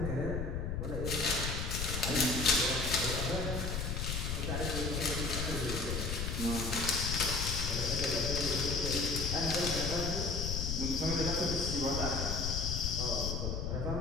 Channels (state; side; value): noise; left; rumble, 2 dB below the sound